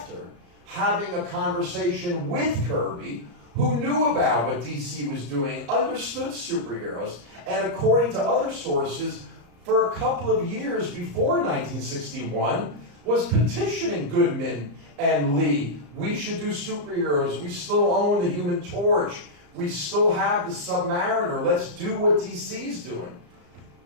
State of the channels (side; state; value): left; late; 34 ms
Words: having a conversation with Kirby, who knew about what DC was doing, understood superheroes, and according to other sources, for a couple of years before 1961, was petitioning Goodman and Lee. We should do superheroes. We still own the Human Torch. We still have the Submariner. Let's do what DC's doing.